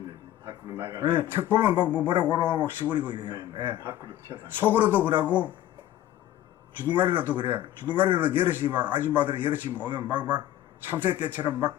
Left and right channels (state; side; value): quieter; right; 13.1 dB